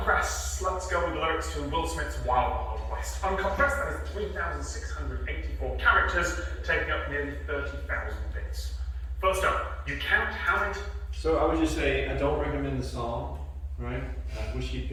Let's go with the lyrics to Will Smith's Wild Wild West. Uncompressed, that is 3,684 characters, taking up nearly 30,000 bits. First up, you count how many. So I would just say, I don't recommend the song, right? I wish he'd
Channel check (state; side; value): identical; both; correlation 1.00